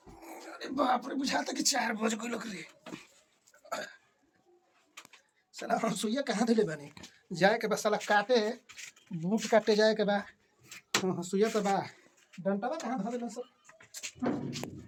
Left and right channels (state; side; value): identical; both; correlation 1.00